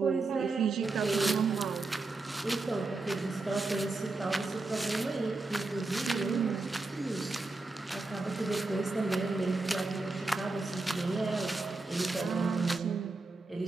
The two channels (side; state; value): left; quieter; 3.4 dB